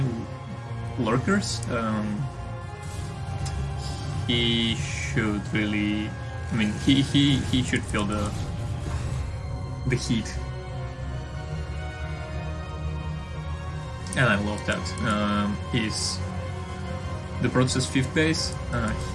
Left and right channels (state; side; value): identical; both; correlation 1.00